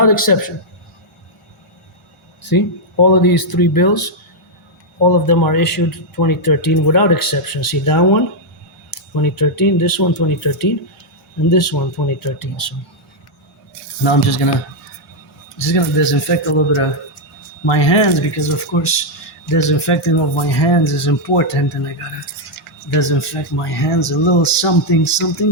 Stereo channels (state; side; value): normal; both; correlation -0.02